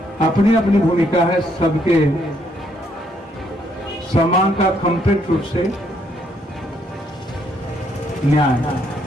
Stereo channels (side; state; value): both; normal; correlation 0.71